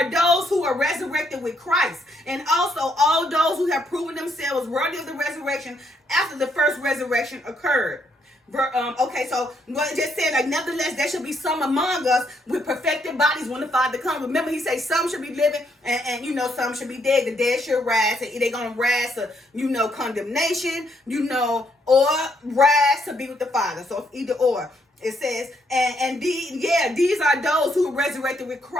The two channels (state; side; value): normal; both; correlation 0.73